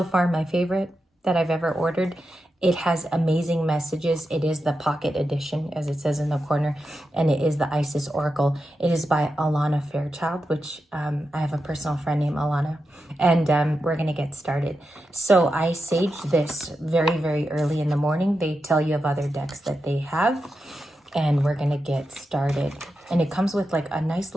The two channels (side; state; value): both; normal; correlation 0.89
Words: far my favorite that I've ever ordered. It has amazing messages. It is the pocket edition, as it says in the corner, and it is the Isis Oracle. It is by Alana Fairchild, which I have a personal friend named Alana, and we're going to get started. So I saged this very, very early in the morning. They tell you of other decks that they have, and we're going to get started. And it comes with like a nice